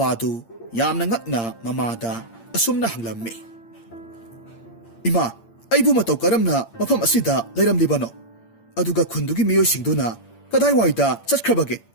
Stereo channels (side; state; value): right; late; 8.7 ms